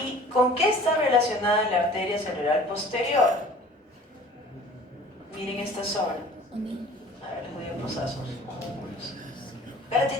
¿con qué está relacionada la arteria cerebral posterior? Miren esta zona. A ver, les voy a pasar sus músculos. ¿Ya la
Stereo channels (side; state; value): both; normal; correlation 0.48